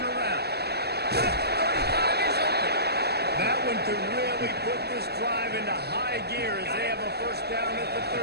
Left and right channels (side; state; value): left; late; 0.47 ms